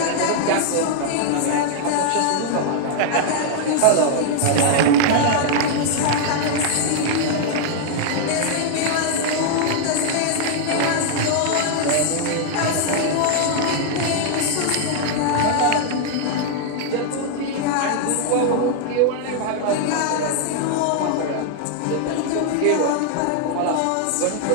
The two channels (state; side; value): different; both; correlation -0.01